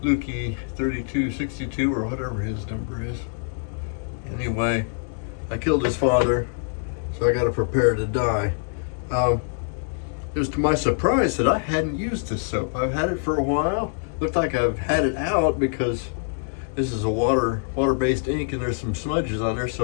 Lukey 3262 or whatever his number is. Anyway, I killed his father, so I got to prepare to die. It was to my surprise that I hadn't used this soap. I've had it for a while. Looked like I've had it out because this is a water-based ink and there's some smudges on there,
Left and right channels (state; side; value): silent; right; 62 dB below the other